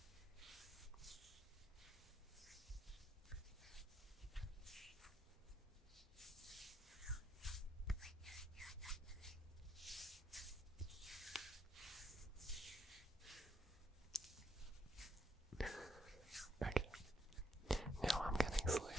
Okay. Now I'm getting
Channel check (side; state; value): both; normal; correlation 0.74